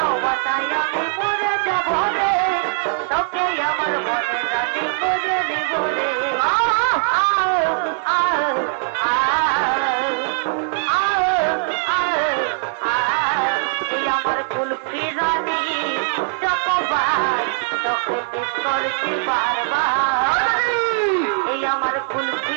আমি মরে যাব রে তোকে আমার মনে রানি করে লিবরে এই আমার কুলফি রানী চকবার তোকে মিস করছি বারবার এই আমার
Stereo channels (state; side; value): silent; left; digital silence